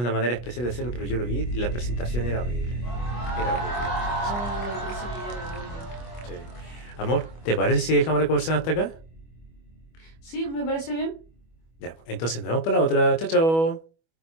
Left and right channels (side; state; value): right; late; 25 ms